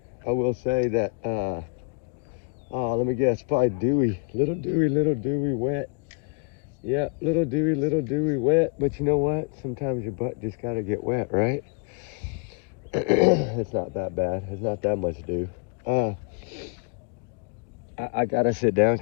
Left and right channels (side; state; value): right; quieter; 36.5 dB